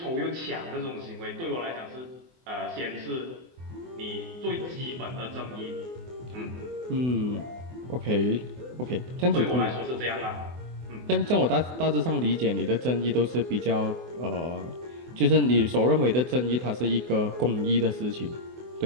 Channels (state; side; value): late; left; 24 ms